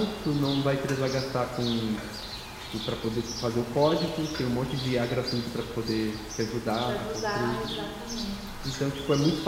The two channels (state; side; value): identical; both; correlation 1.00